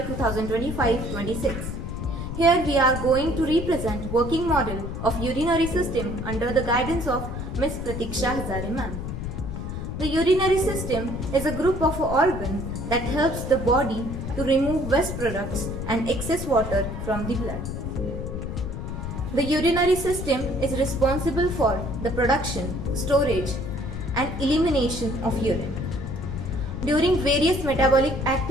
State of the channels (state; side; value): noise; left; rumble, 6 dB below the sound